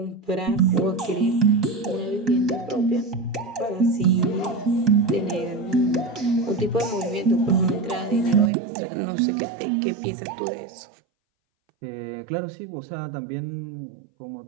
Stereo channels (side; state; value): left; drops out; at 8.5 s